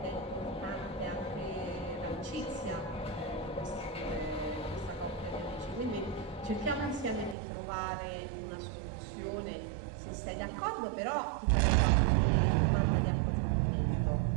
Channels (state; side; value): drops out; left; at 7.4 s